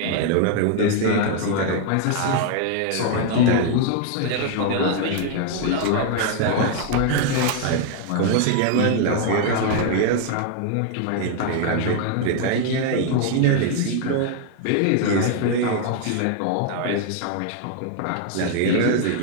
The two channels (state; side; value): different; both; correlation 0.00